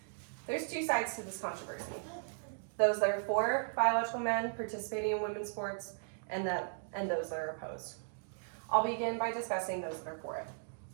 There's two sides to this controversy. Those that are for biological men participating in women's sports and those that are opposed. I'll begin by discussing those that are for it.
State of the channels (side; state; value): left; silent; digital silence